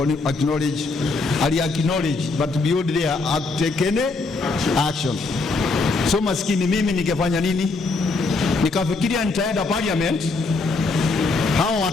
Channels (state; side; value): quieter; right; 3.7 dB